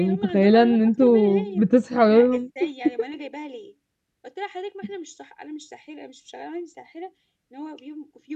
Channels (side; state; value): both; identical; correlation 1.00